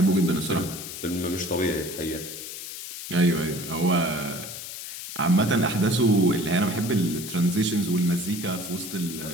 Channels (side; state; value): left; noise; hiss, 9 dB below the sound